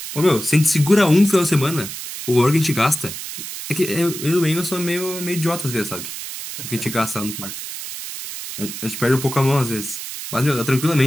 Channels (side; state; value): right; noise; hiss, 9 dB below the sound